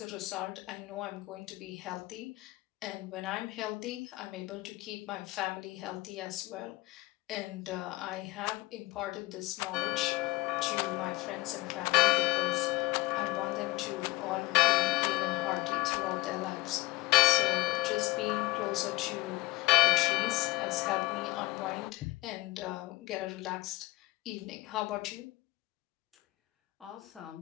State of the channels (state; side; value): quieter; right; 22.0 dB